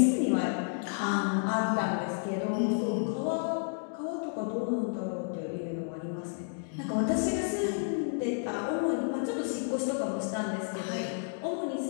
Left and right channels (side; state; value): right; silent; digital silence